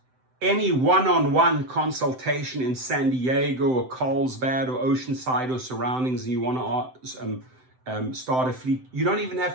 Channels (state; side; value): late; left; 7.8 ms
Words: any one-on-one consultation in San Diego or Carlsbad or Oceanside or surroundings, and you want to start a fleet, you don't even have